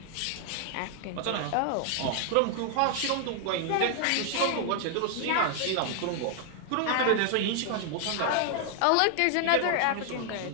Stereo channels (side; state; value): both; different; correlation 0.00